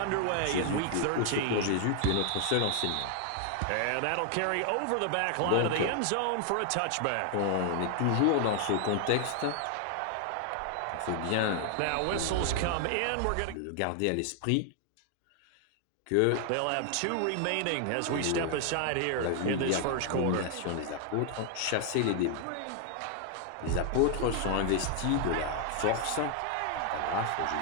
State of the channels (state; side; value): different; both; correlation 0.00